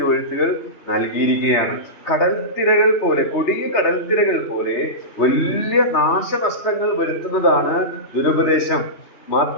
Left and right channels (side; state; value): right; late; 2.9 ms